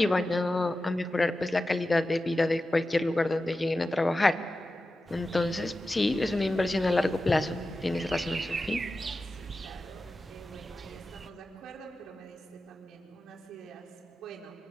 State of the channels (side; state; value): both; normal; correlation 0.93